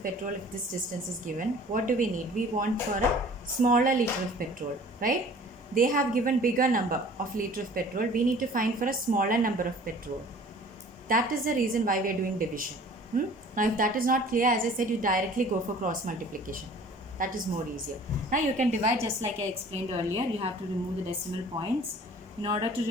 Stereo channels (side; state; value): both; normal; correlation 0.48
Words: petrol, if this distance is given, what do we need? We want for a smaller liter of petrol, right? They have given bigger number of liter of petrol. We need to find for a smaller number of petrol. That is the reason why we are doing division. Now, if that is not clear, as I said, you directly go for cross multiplication. That is more easier. Now, you can divide just like I explained earlier. You have to remove the decimal points. In order to